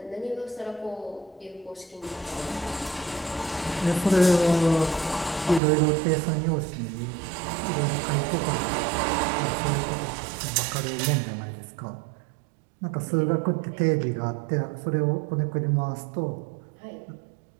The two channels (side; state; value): left; drops out; at 5.6 s